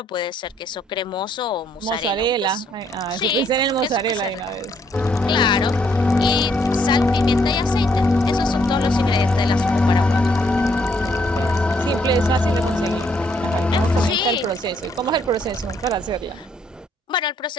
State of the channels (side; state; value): both; normal; correlation 0.70